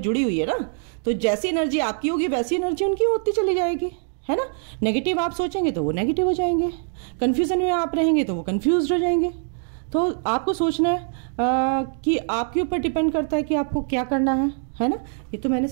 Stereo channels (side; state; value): left; silent; 63 dB below the other